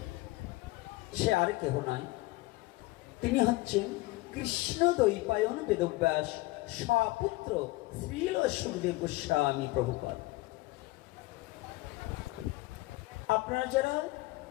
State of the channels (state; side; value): quieter; right; 20.6 dB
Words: সে আর কেহ নয়, তিনি হচ্ছেন কৃষ্ণ দ্বৈপায়ন বেদব্যাস স্বপুত্র শ্রীল সুখদেব গোস্বামী প্রভুপাদ। আপনারা যারা